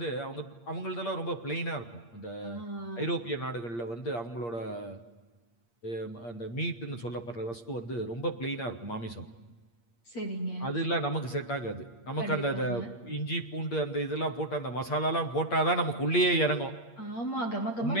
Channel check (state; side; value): late; right; 8.6 ms